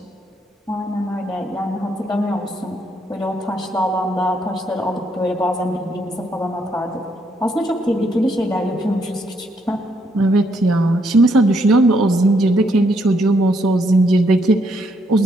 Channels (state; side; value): normal; both; correlation 0.73